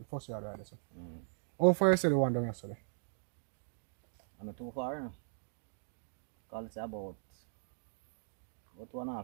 first yard right there, so. Mm. How far is it the one down yesterday? I'm not too far, you know. Call it about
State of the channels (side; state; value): left; silent; digital silence